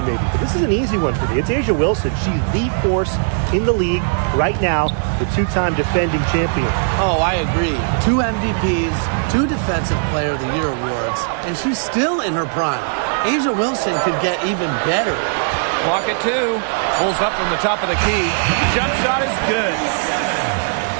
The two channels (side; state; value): left; silent; digital silence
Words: maybe, but this is an easy one for me. It's A'ja Wilson. She's the force in the league right now, the 2-time defending champion. Oh, I agree. 2 MVPs, 2 Defensive Player of the Year awards, and she's still in her prime. A'ja Wilson could get even better. Clock at 2. Pulls up from the top of the key. Jump shot is good.